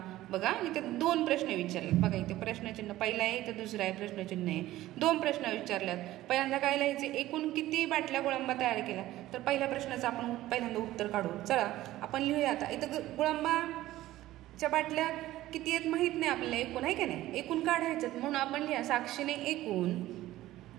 बघा इथे 2 प्रश्न विचारले. बघा इथे प्रश्नचिन्ह पहिला आहे, इथे दुसरा आहे प्रश्नचिन्ह आहे. 2 प्रश्न विचारल्यात. पहिल्यांदा काय लिहायचे? एकूण किती बाटल्या गुळंबा तयार केला. तर पहिल्या प्रश्नाचं आपण पहिल्यांदा उत्तर काढू. चला आपण लिहूया. आता इथं गुळंबाच्या बाटल्या किती आहेत माहीत नाही आपल्याला, एकूण आहे का नाही, एकूण काढायचं. म्हणून आपण लिहा साक्षीने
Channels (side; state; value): left; quieter; 15.5 dB